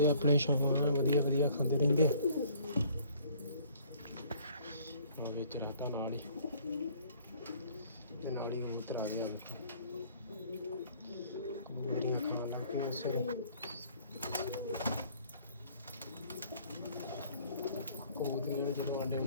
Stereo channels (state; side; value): inverted; both; correlation -0.57